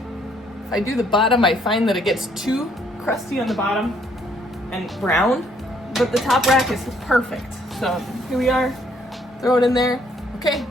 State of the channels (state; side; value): normal; both; correlation 0.67